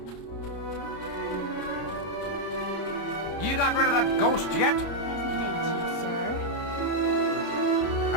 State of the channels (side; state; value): right; late; 29 ms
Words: You got rid of that ghost yet?